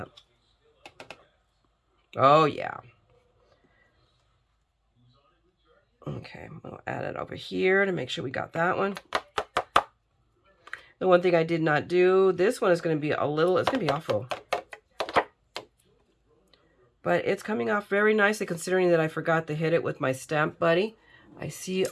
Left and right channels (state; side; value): identical; both; correlation 1.00